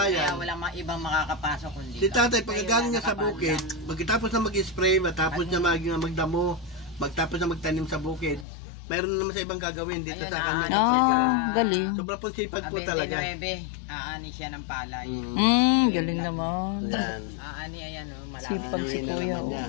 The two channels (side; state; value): right; drops out; at 8.5 s